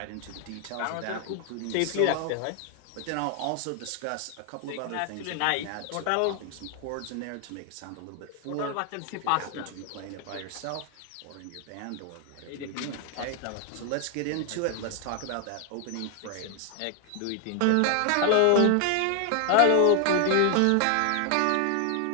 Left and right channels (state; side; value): different; both; correlation 0.00